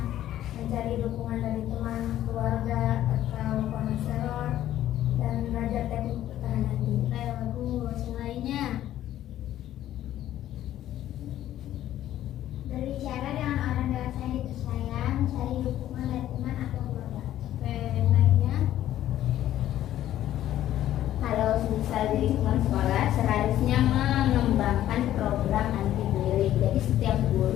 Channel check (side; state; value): right; quieter; 12.7 dB